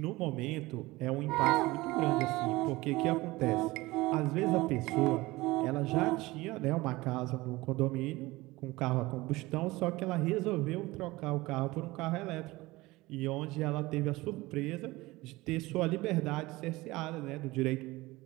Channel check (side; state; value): left; quieter; 20.4 dB